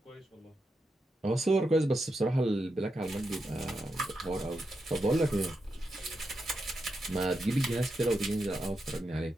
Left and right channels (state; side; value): normal; both; correlation 0.86